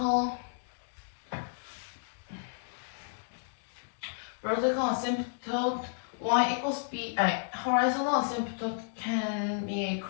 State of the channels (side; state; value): right; silent; digital silence